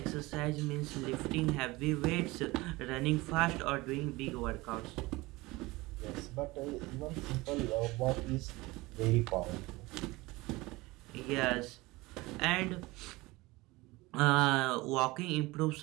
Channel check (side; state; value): left; quieter; 21.5 dB